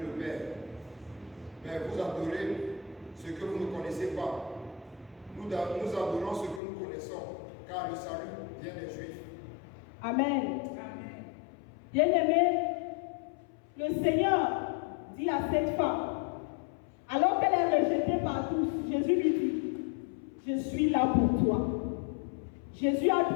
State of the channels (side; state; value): right; drops out; at 6.6 s